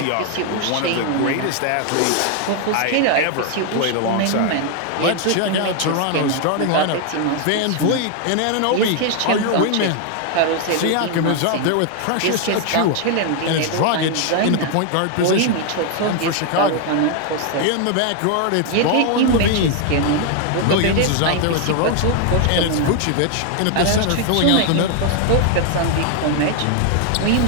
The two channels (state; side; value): different; both; correlation 0.01